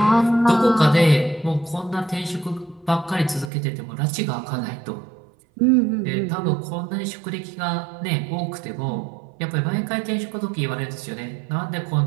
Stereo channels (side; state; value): left; drops out; at 3.5 s